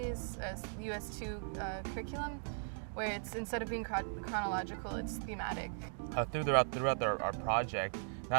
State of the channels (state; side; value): silent; left; digital silence